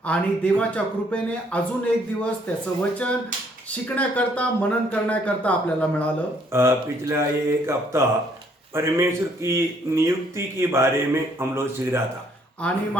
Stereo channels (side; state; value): both; normal; correlation 0.66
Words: आणि देवाच्या कृपेने अजून एक दिवस त्याचं वचन शिकण्याकरता मनन करण्याकरता आपल्याला मिळालं। पिछला एक हफ्ता परमेश्वर की नियुक्ति के बारे में हम लोग सीख रहा था। आणि